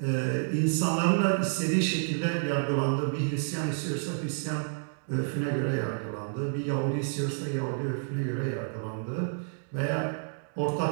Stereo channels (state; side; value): silent; left; digital silence